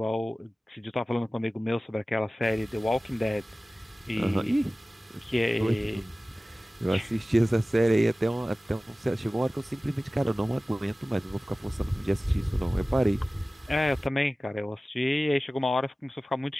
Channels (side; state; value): both; normal; correlation 0.97